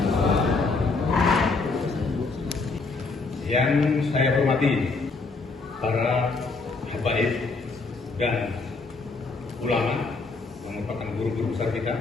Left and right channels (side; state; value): right; quieter; 4.0 dB